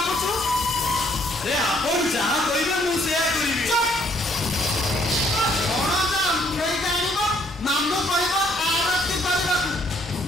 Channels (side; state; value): both; normal; correlation 0.66